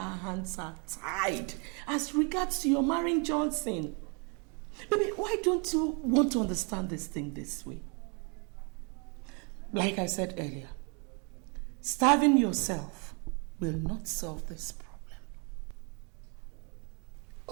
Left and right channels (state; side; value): quieter; left; 35.2 dB